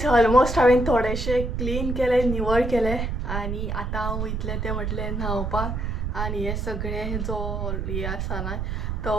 ऑलमोस्ट हांवें थोडेशे क्लीन केले, निवळ केले आनी आतां हांव वयतलें तें म्हटलें न्हावपाक. आनी हे सगळे जो हे आसा ना तो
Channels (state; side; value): noise; right; rumble, 2 dB below the sound